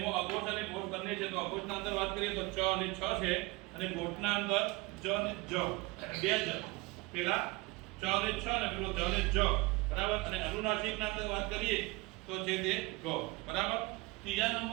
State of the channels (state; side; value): quieter; left; 23.3 dB